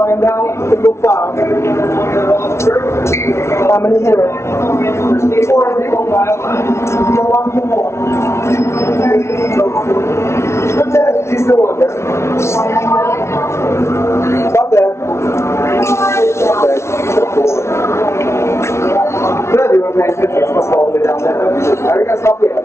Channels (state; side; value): late; right; 0.13 ms